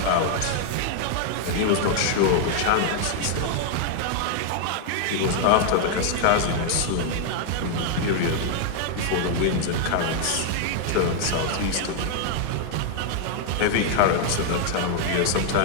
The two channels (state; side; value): different; both; correlation 0.00